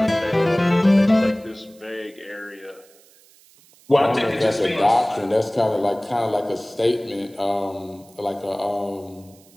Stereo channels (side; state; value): right; noise; hiss, 28 dB below the sound